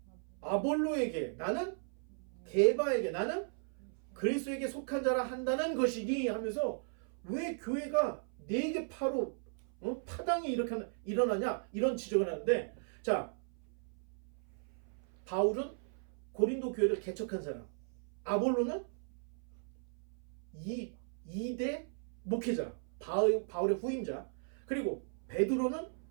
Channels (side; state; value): left; silent; 53 dB below the other